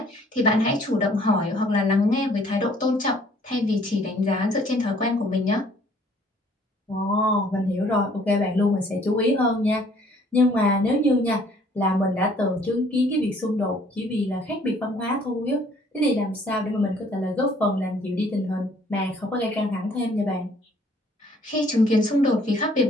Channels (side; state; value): both; normal; correlation 0.59